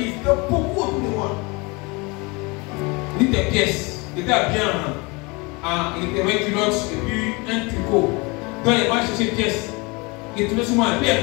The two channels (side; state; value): right; quieter; 27.3 dB